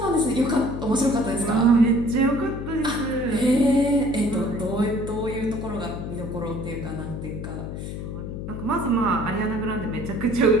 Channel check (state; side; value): noise; left; hum, 7 dB below the sound